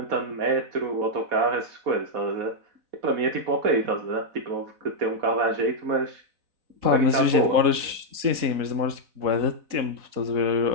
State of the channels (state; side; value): late; left; 4.0 ms